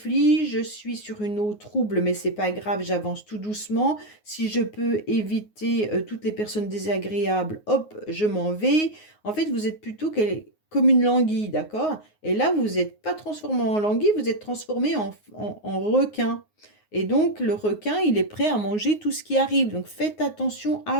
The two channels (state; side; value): late; right; 9.5 ms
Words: je suis sur une eau trouble, mais c'est pas grave, j'avance tout doucement. Si je peux éviter toutes les personnes désagréables, hop, je m'en vais. En fait, vous êtes plutôt comme une languille, d'accord? Et là, vous n'êtes pas transformé en languille, vous êtes transformé en requin. Et donc, le requin, il est prêt à manger tout ce qui arrive. Donc, faites attention